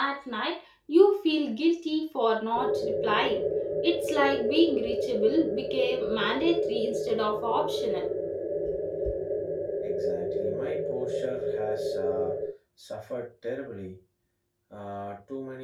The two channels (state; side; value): identical; both; correlation 1.00